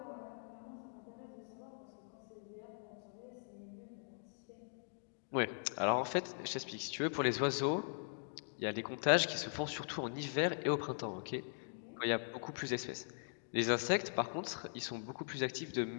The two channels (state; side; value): silent; right; digital silence